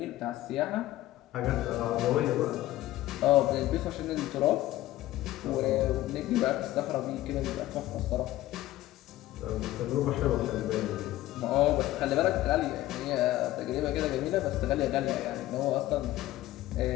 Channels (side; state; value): right; quieter; 15.6 dB